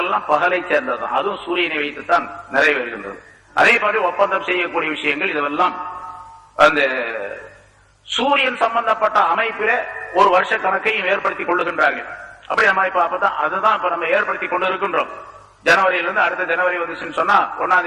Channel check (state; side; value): identical; both; correlation 1.00